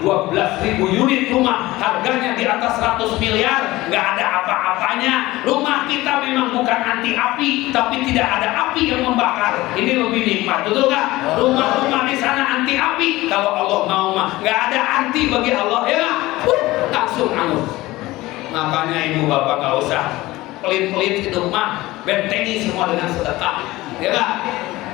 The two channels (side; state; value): right; quieter; 18.6 dB